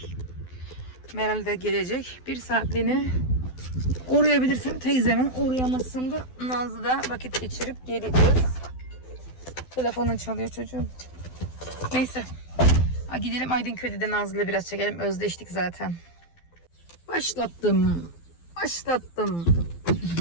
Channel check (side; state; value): right; late; 12 ms